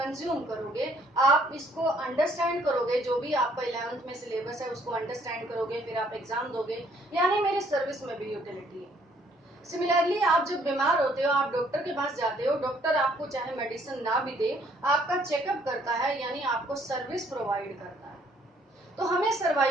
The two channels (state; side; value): normal; both; correlation 0.64